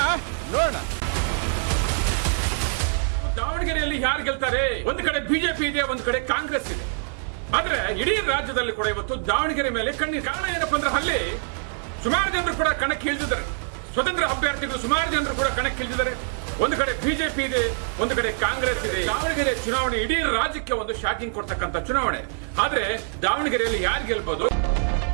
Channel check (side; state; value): left; silent; 61 dB below the other